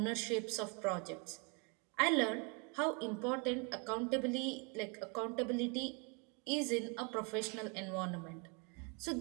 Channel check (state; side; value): quieter; left; 32.5 dB